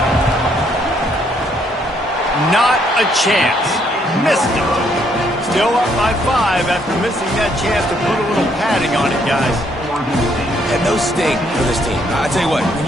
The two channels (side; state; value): both; normal; correlation 0.70